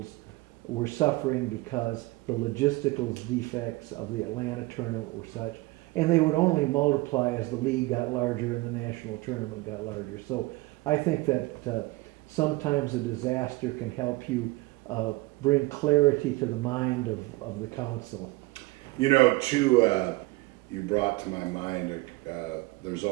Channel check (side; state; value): left; quieter; 21.6 dB